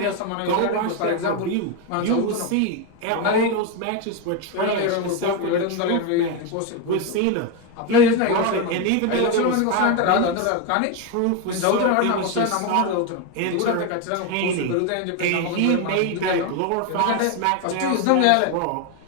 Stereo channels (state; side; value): different; both; correlation 0.02